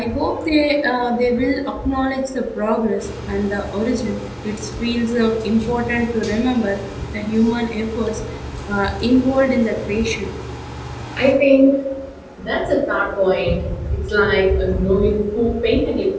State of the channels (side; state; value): both; identical; correlation 1.00